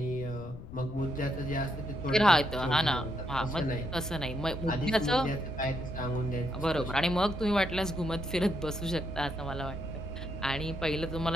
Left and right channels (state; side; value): noise; left; rumble, 13 dB below the sound